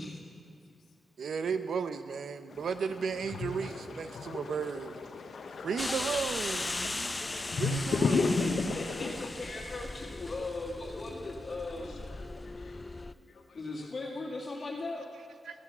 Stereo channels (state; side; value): normal; both; correlation 0.83